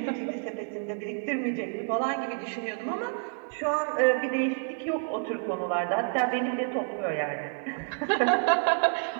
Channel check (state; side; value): silent; left; 59 dB below the other